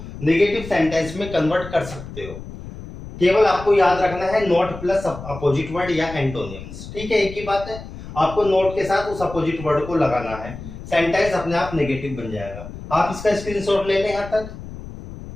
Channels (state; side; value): noise; left; rumble, 12 dB below the sound